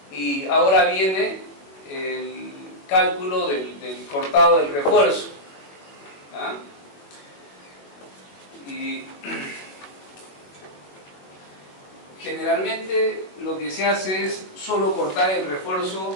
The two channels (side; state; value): right; late; 21 ms